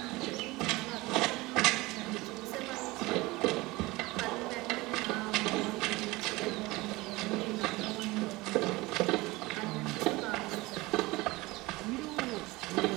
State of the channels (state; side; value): quieter; left; 21.3 dB